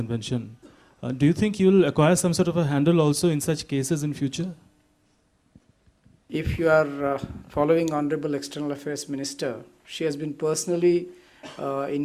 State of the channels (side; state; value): both; identical; correlation 1.00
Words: do you think you'll acquire some sort of a handle also in such cases in future? If you are following Honorable External Affairs Minister, she has been personally